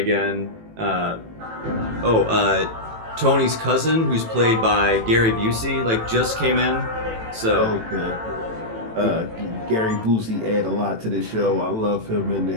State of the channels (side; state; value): left; late; 18 ms